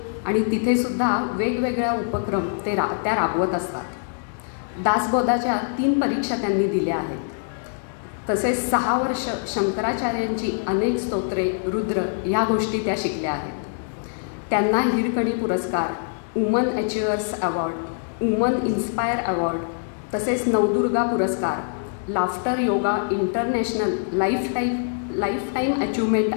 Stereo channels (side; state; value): right; silent; digital silence